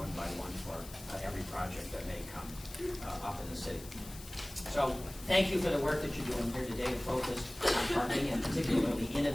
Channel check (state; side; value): noise; left; hiss, 16 dB below the sound